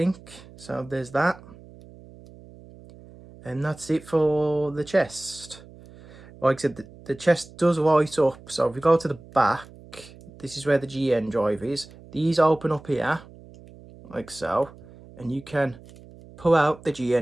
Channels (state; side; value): noise; right; hum, 21 dB below the sound